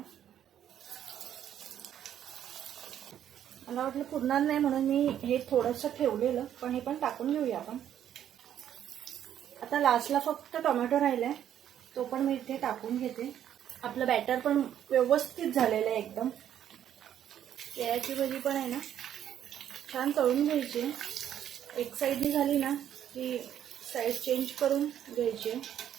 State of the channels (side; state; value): left; quieter; 10.3 dB